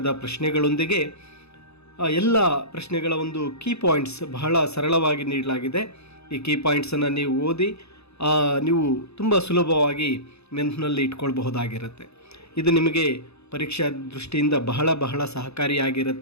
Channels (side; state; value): right; late; 0.79 ms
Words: ಪ್ರಶ್ನೆಗಳೊಂದಿಗೆ ಎಲ್ಲ ಪ್ರಶ್ನೆಗಳ ಒಂದು ಕೀ ಪಾಯಿಂಟ್ಸ್ ಬಹಳ ಸರಳವಾಗಿ ನೀಡಲಾಗಿದೆ. ಈ ಕೀ ಪಾಯಿಂಟ್ಸನ್ನು ನೀವು ಓದಿ ನೀವು ತುಂಬ ಸುಲಭವಾಗಿ ನೆನಪಿನಲ್ಲಿ ಇಟ್ಕೊಳ್ಬಹುದಾಗಿರುತ್ತೆ. ಇದು ನಿಮಗೆ ಪರೀಕ್ಷಾ ದೃಷ್ಟಿಯಿಂದ ಬಹಳ